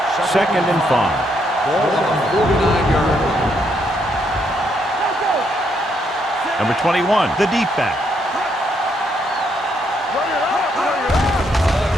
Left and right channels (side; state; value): both; normal; correlation 0.75